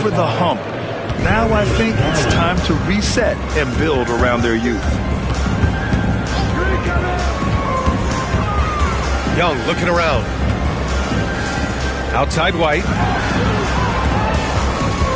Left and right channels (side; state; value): both; identical; correlation 1.00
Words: the hump. Now I think it's time to reset and build around their youth. Young looking around. Outside White.